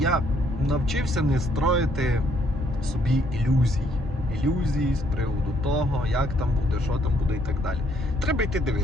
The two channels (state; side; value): normal; both; correlation 0.69